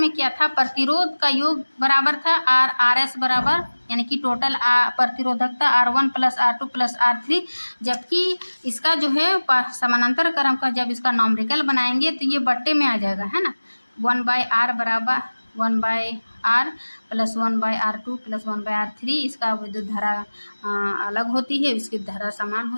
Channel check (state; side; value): inverted; both; correlation -1.00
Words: क्या था, प्रतिरोध का योग बराबर था RS बराबर, यानी कि टोटल प्रतिरोधकता R1 plus R2 plus R3, जबकि इसका जो है समानांतर क्रम का जब इसका नॉमरिकल बनाएंगे तो ये बट्टे में आ जाएगा, है ना। 1 बाय R बराबर 1 by R plus 1 by R2 plus 1 by R3, इसका विद्युत धारा अलग होती है, इसकी धारा समान